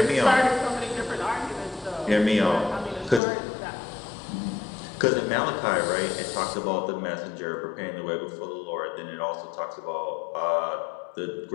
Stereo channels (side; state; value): right; drops out; at 3.2 s